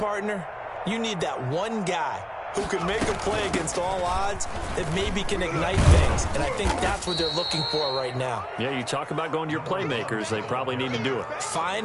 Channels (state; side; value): identical; both; correlation 1.00